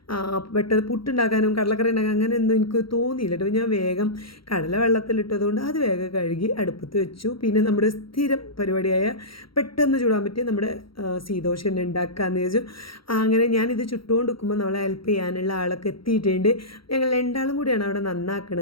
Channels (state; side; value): late; right; 0.74 ms